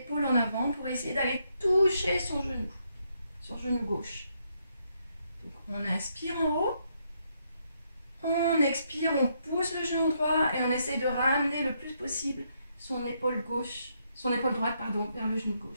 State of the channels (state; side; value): inverted; both; correlation -0.76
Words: en avant pour essayer d'aller toucher son genou gauche. Donc on inspire en haut, on expire, on pousse le genou droit et on essaye de ramener le plus possible son épaule droite vers le genou